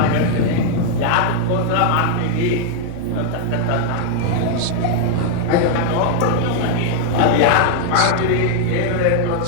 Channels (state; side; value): different; both; correlation 0.00